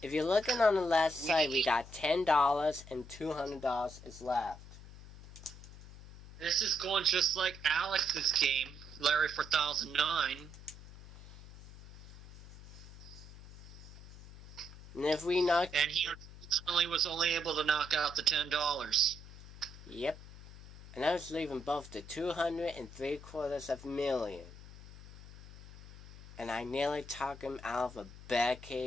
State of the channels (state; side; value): noise; left; hum, 17 dB below the sound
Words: If you're looking on the left side, we got $10 and $200 is left. This is going just like Alex's game, Larry 4009. And if we knock... And he unfortunately was only able to knock out the $10. Yep. And I was leaving both the 203/4 and I nearly talked him out of a bad